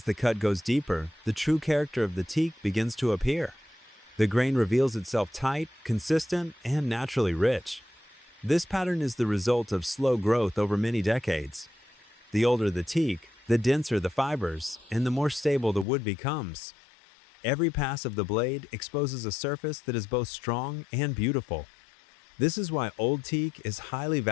the cut goes deeper, the true character of the teak begins to appear. The grain reveals itself tight, consistent, and naturally rich. This pattern is the result of slow growth over many decades. The older the teak, the denser the fibers, and the more stable the wood becomes. Every pass of the blade exposes a surface that is both strong and beautiful. This is why old teak is highly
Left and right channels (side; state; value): right; drops out; at 15.9 s